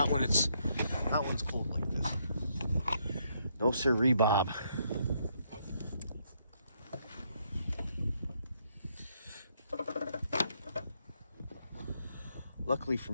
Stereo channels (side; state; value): both; inverted; correlation -0.74